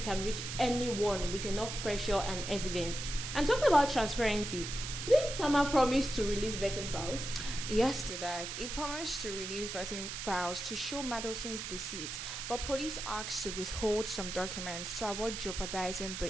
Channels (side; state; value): right; noise; hiss, 6 dB below the sound